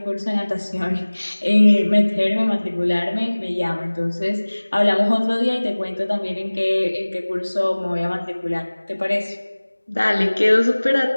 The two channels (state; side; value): inverted; both; correlation -1.00